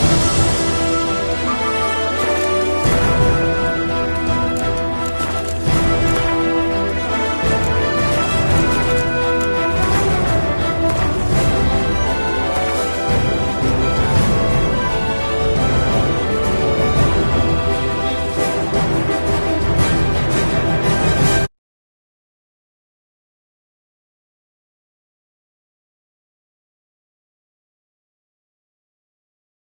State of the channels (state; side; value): inverted; both; correlation -1.00